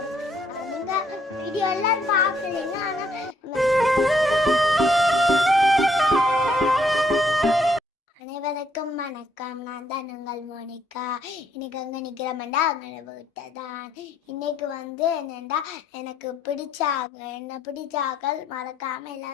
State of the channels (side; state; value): both; normal; correlation 0.70